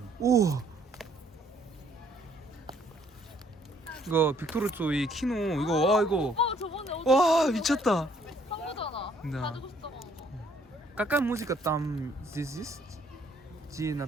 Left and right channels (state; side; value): normal; both; correlation 0.64